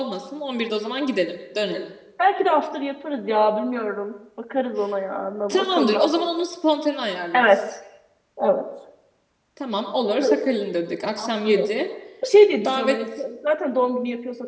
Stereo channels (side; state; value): both; identical; correlation 1.00